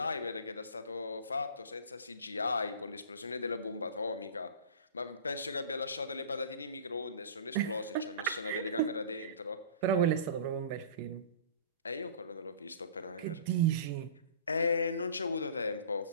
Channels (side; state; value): both; inverted; correlation -0.40